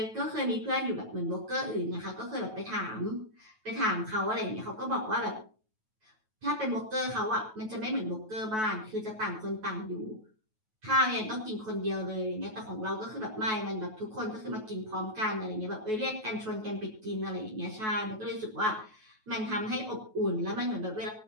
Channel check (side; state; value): left; late; 9.3 ms